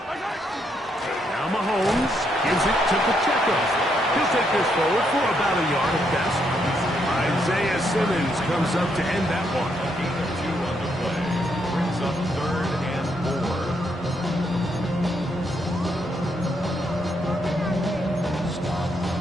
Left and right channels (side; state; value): both; normal; correlation 0.76